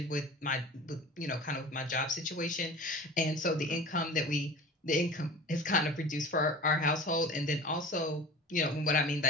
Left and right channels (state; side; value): normal; both; correlation 0.38